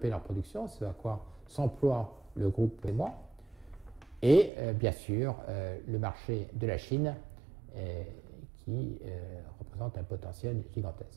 leur production, c'est à quoi s'emploie le groupe et moi. Et bien sûr, le marché de la Chine qui représente un potentiel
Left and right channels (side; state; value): left; drops out; at 4.5 s